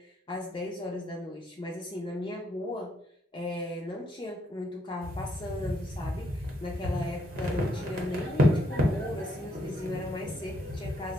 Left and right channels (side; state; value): both; normal; correlation 0.74